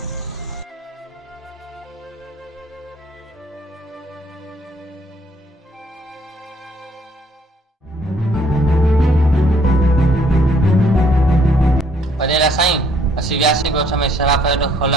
वॾेरा साईं, असीं वियासीं ॻोठ में शराब अॾो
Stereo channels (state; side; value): normal; both; correlation 0.64